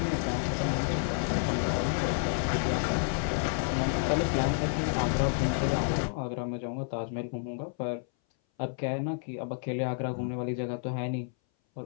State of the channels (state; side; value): silent; right; 58 dB below the other